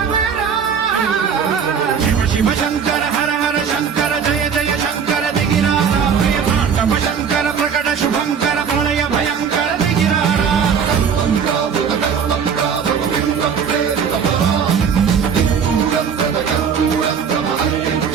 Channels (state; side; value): quieter; left; 6.9 dB